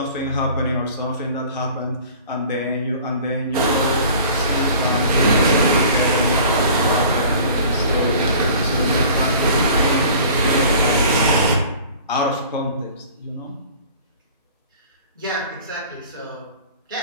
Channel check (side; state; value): both; inverted; correlation -0.46